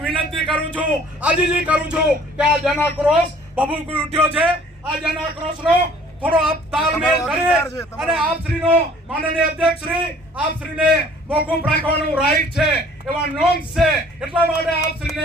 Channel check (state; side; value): normal; both; correlation 0.54